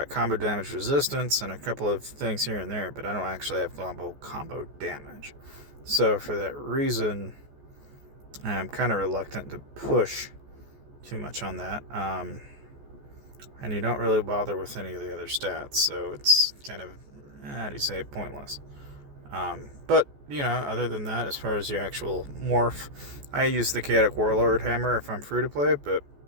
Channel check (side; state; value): left; late; 14 ms